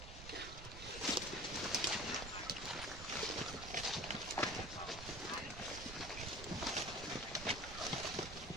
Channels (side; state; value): right; noise; rumble, 10 dB below the sound